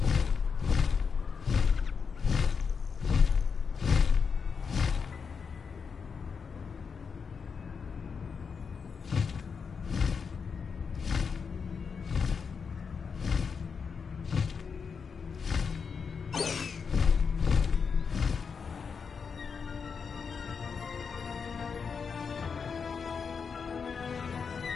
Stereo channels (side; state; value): right; quieter; 5.8 dB